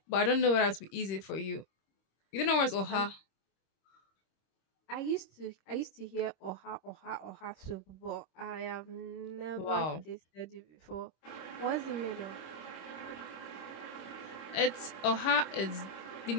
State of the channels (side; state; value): right; late; 26 ms